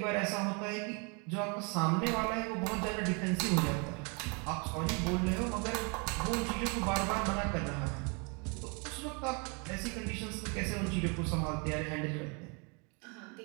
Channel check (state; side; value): quieter; left; 33.5 dB